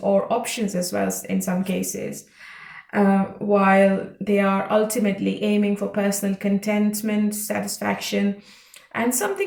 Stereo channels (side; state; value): both; identical; correlation 1.00